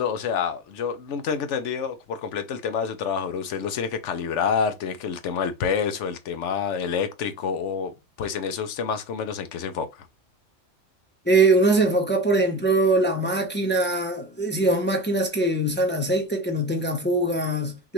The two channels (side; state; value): both; normal; correlation 0.22